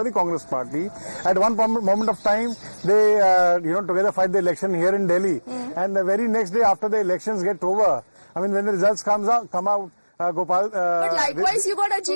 the Congress party. At one moment of time, they together fight the election here in Delhi, and the very next day after the elections get over, I mean when the results come out. Gopal, but likewise, you got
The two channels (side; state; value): both; inverted; correlation -1.00